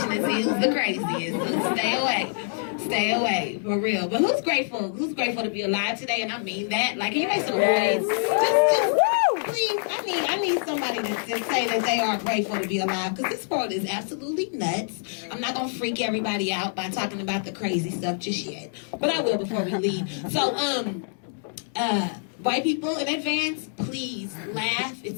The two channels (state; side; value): silent; right; digital silence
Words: to see who's the craziest. So stay away, for real. But who's grateful? Who's grateful to be alive today? And I mean that. Like, can you make some noise? Just please. I need somebody to say that they are grateful to be alive, because this world is absolutely nuts. I'm not gonna freak everybody out by talking about the crazy stuff just yet, but I will before we leave. So, white people in advance, please laugh.